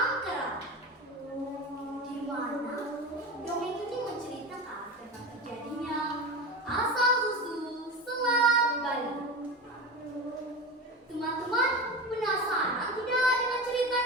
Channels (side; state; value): both; normal; correlation 0.25